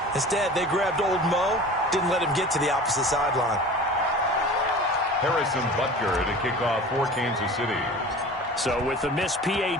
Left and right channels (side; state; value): both; normal; correlation 0.39